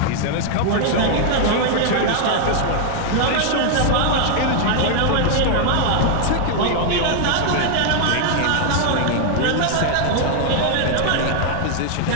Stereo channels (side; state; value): both; different; correlation 0.00